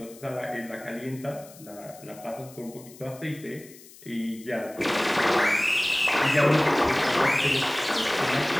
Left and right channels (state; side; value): noise; left; hiss, 21 dB below the sound